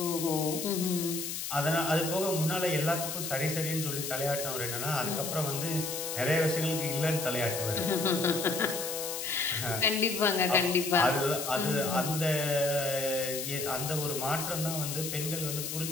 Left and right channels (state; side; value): noise; left; hiss, 5 dB below the sound